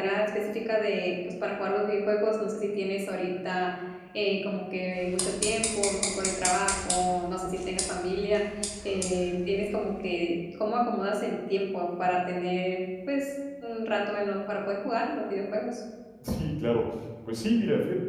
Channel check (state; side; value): identical; both; correlation 1.00